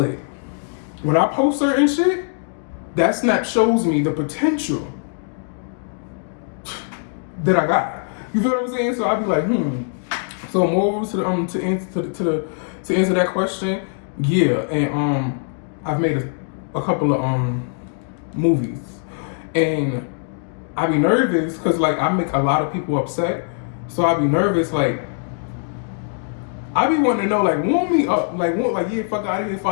When I post certain shit, that snap shows me the potential that I got. You feel what I'm saying? So I'd be like, So more to the to answer that question, yeah. And I've made a couple of movies, and I be nervous because like I make a lot of people upset. So I be nervous, like I be wanting to know, like warm me up, like yeah, fuck out of here. If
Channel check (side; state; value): right; silent; 65 dB below the other